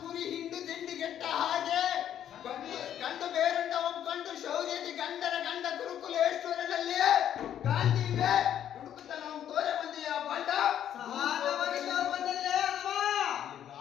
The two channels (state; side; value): quieter; right; 10.3 dB